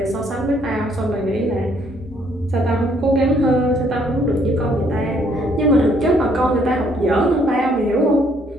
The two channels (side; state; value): both; normal; correlation 0.66